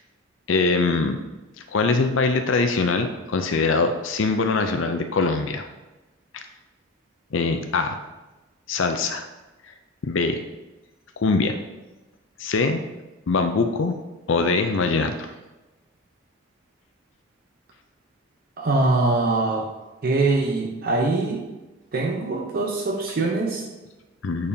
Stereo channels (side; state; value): both; normal; correlation 0.26